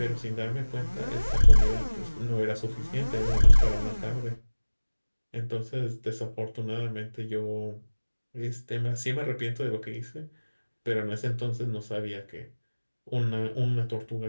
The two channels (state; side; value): inverted; both; correlation -1.00